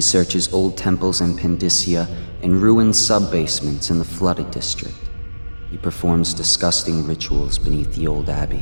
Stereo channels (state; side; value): inverted; both; correlation -1.00